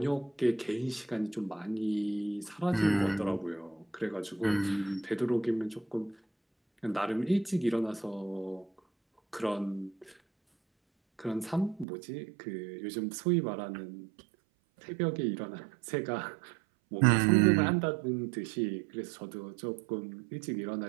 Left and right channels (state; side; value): drops out; left; at 11.9 s